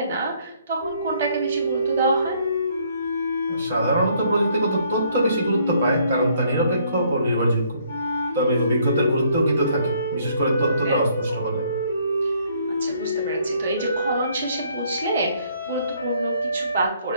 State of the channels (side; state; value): both; inverted; correlation -0.66